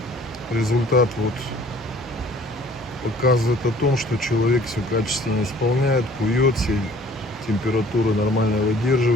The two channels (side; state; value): both; normal; correlation 0.54